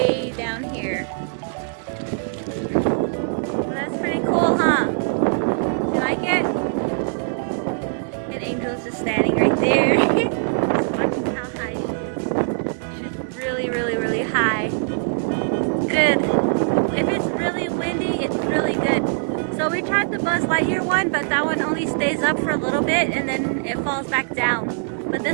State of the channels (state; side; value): silent; left; 64 dB below the other